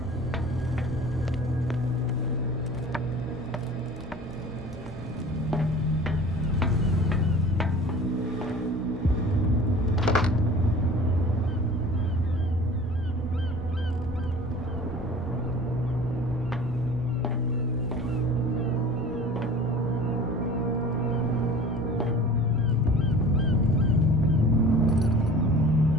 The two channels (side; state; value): both; normal; correlation 0.42